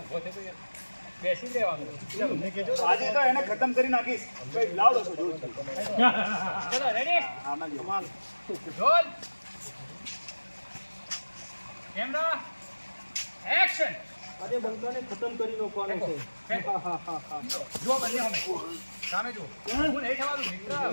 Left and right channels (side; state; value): both; inverted; correlation -1.00